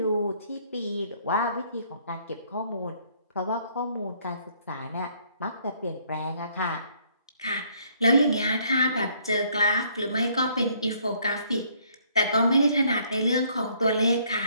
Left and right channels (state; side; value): inverted; both; correlation -0.65